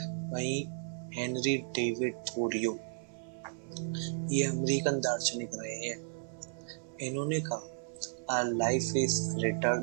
वहीं हेनरी डेविड थोरियो, ये अमेरिकन दार्शनिक रहे हैं। इन्होंने कहा our life is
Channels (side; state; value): left; silent; 55 dB below the other